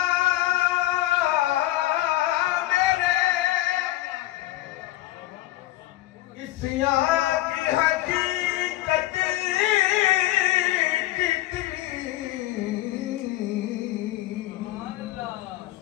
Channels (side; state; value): right; quieter; 16.3 dB